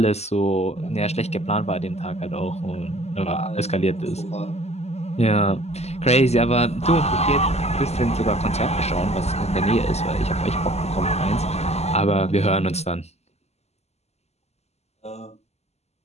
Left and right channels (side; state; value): right; late; 0.31 ms